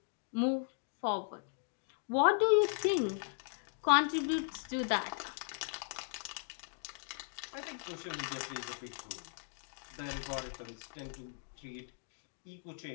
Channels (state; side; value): silent; right; digital silence